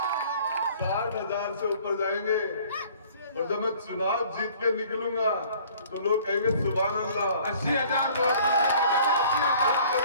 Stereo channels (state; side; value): inverted; both; correlation -0.53